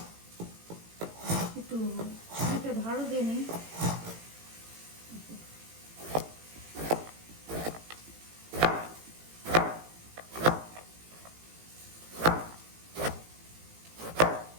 একটু ছুরিতে ধারও দিয়ে নিই।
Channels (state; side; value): late; left; 18 ms